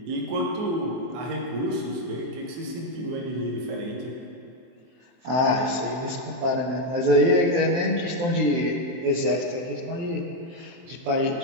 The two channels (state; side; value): late; left; 23 ms